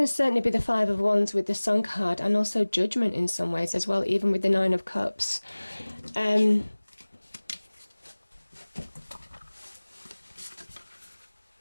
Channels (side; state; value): both; inverted; correlation -1.00